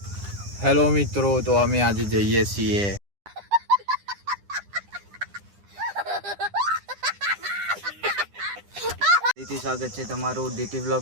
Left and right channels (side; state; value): left; late; 9.9 ms